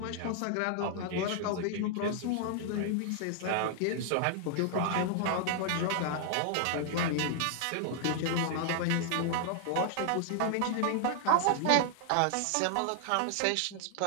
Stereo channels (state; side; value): different; both; correlation 0.00